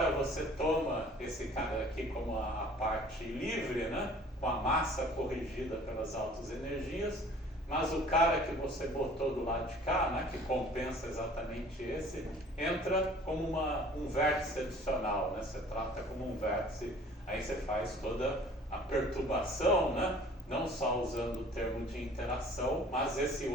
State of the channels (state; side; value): normal; both; correlation 0.50